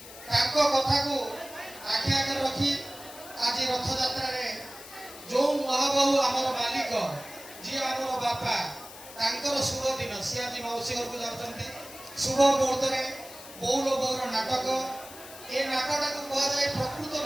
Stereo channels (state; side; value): noise; left; hiss, 16 dB below the sound